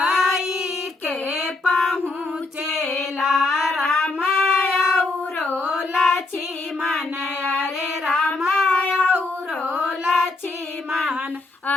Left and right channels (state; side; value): quieter; right; 3.2 dB